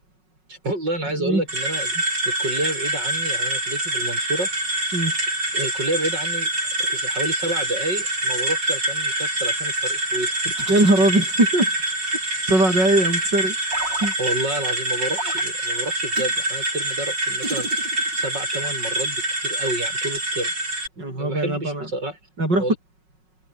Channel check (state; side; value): late; left; 5.4 ms